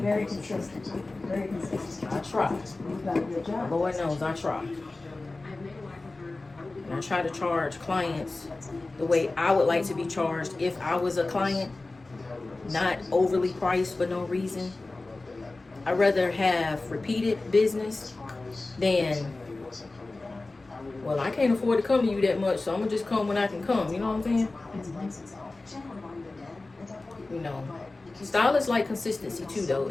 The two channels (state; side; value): quieter; right; 3.2 dB